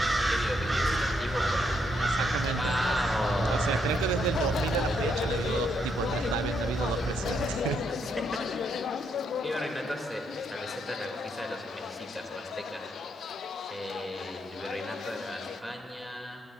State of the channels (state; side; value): normal; both; correlation 0.75